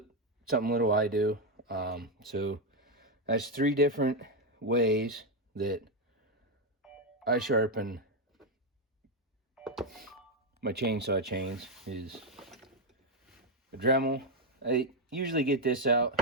something little I do. So that's 3 different ways that I sharpen my chainsaw chains. Is a Dremel. I usually get this out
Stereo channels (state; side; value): normal; both; correlation 0.03